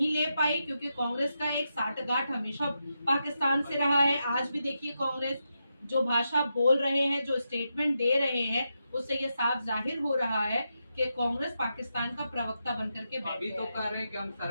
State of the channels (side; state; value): both; inverted; correlation -0.86